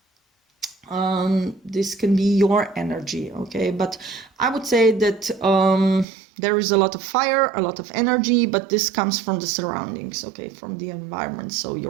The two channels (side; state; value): left; drops out; at 6.1 s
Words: this can be your energy. Okay, but I would say that there is a lot of fire, a lot of energy, but this comes from the surroundings, okay, from the environment. So